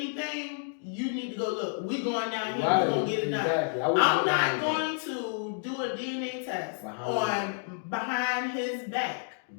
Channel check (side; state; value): right; silent; digital silence